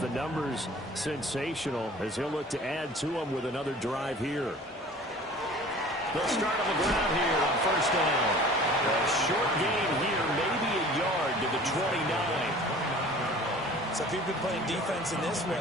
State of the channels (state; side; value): normal; both; correlation 0.45